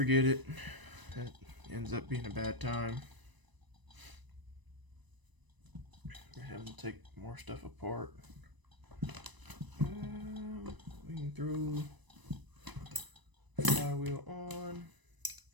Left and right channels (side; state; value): left; late; 1.0 ms